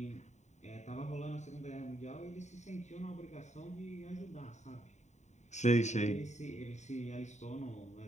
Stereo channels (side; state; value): right; late; 0.34 ms